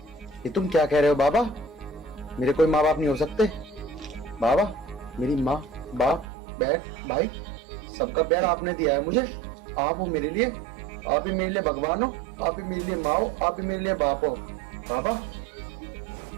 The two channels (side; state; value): left; drops out; at 6.2 s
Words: ये तुम क्या कह रहे हो बाबा? मेरे कोई माँ बाप नहीं हो सकते। बाबा, मेरी माँ, बाप, बहन, भाई, सबका प्यार आपने दिया है मुझे। आप हो मेरे लिए, आप ही मेरे लिए भगवान हो, आप ही मेरे लिए माँ हो, आप ही मेरे लिए बाप हो। बाबा,